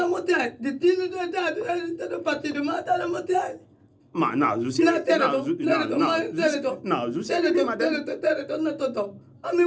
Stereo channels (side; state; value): both; identical; correlation 1.00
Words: motiagem. De tino de idade, ele está no partido, mas está na motiagem. Mas não, Jussi. Não, Jussi. A minha